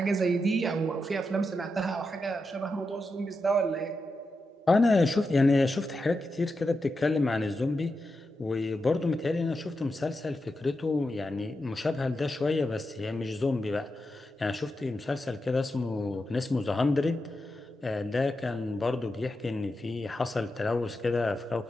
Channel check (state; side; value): normal; both; correlation 0.88